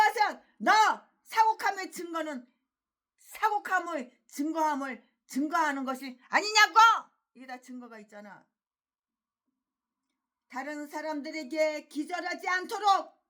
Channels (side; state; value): both; identical; correlation 1.00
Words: 너 사곡함의 증거함을 증거하는 것이 아니냐고. 이게 다 증거가 있잖아. 다른 사람들에게 기절하지 않도록